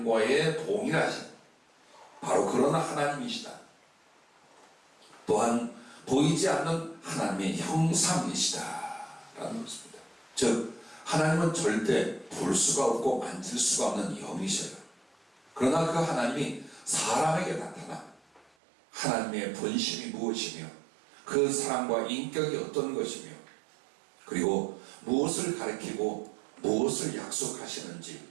동일하신 바로 그런 하나님이시다. 또한 보이지 않는 하나님의 형상이시다 라는 것입니다. 즉 하나님은 절대 볼 수가 없고 만질 수가 없는 영이셔요. 그러나 그 하나님이 사람에게 나타나 하나님의 본심이 무엇이며 그 사랑과 인격이 어떤 것이며 그리고 무엇을 가리키고 무엇을 약속하시는지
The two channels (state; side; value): drops out; left; at 18.4 s